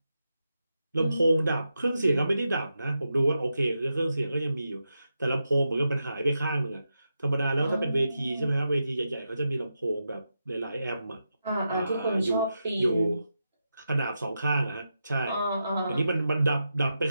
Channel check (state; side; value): inverted; both; correlation -0.87